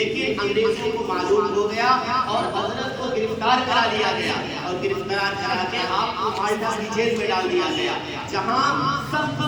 انگریزوں کو معلوم ہو گیا اور حضرت کو گرفتار کرا لیا گیا اور گرفتار کرا کے آپ کو مالٹا کی جیل میں ڈال دیا گیا، جہاں سخت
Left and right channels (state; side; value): identical; both; correlation 1.00